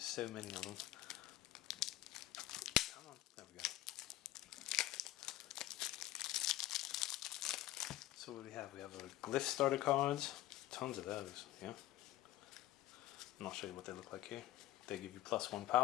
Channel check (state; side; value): quieter; right; 15.3 dB